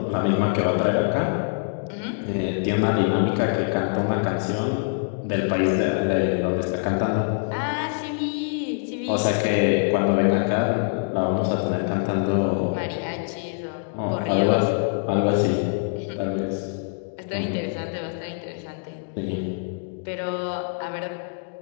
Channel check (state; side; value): silent; right; digital silence